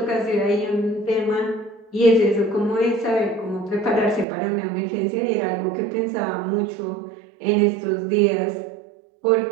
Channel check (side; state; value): left; drops out; at 4.2 s